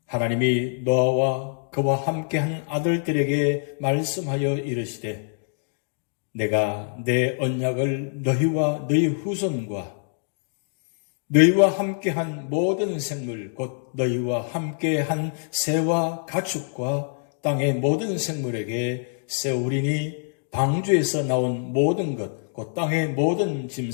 하나님이 노아와 그와 함께한 아들들에게 말씀하여 이르시되 내가 내 언약을 너희와 너희 후손과 너희와 함께한 모든 생물 곧 너희와 함께한 새와 가축과 땅의 모든 생물에게 세우리니 방주에서 나온 모든 것 곧 땅의 모든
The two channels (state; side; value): silent; right; digital silence